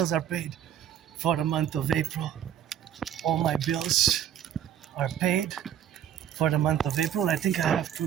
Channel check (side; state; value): left; quieter; 10.2 dB